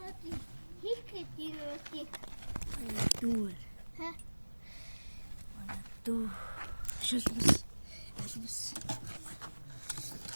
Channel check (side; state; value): both; inverted; correlation -1.00